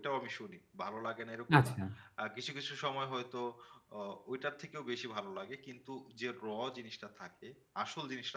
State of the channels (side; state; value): both; identical; correlation 1.00